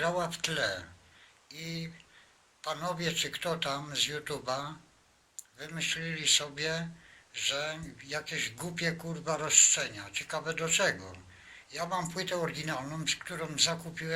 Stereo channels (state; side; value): identical; both; correlation 1.00